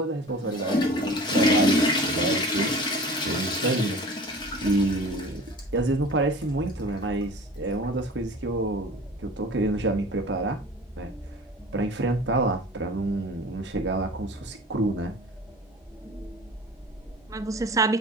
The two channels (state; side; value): normal; both; correlation 0.41